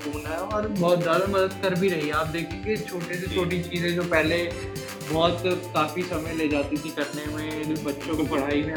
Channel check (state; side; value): identical; both; correlation 1.00